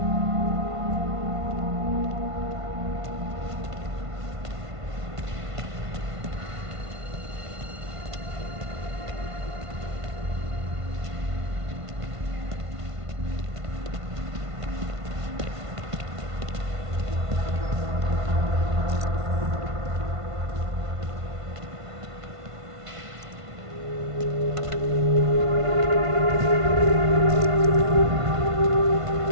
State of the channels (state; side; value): late; left; 1.5 ms